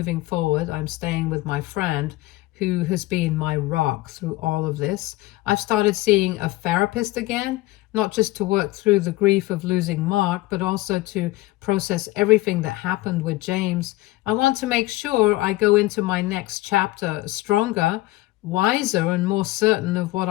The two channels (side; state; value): right; quieter; 19.0 dB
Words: forward. I'm staying with my friend who has been my rock through all of this. I've started seeing a therapist again, not just to work through the grief of losing Mark, but also to process everything that happened with James. I want to make sure I go into my next chapter stronger, wiser, and more certain of what